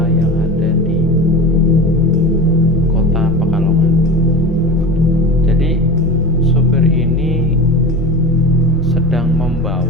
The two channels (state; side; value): normal; both; correlation 0.31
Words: yang ada di kota Pekalongan. Jadi sopir ini sedang